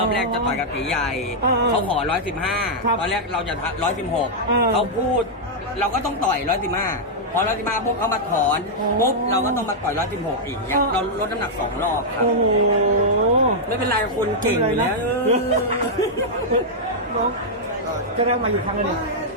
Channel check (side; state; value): both; normal; correlation -0.06